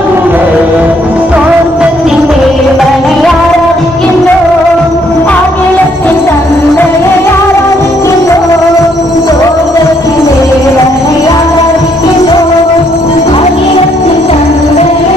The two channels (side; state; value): both; normal; correlation 0.69